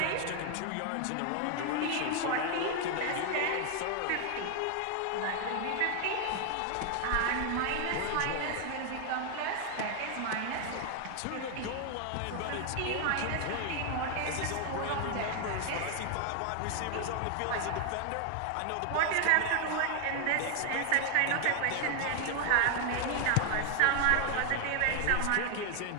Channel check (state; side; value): different; both; correlation 0.00